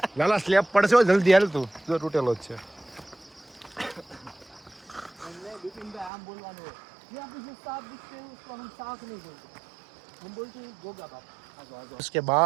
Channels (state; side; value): drops out; left; at 6.1 s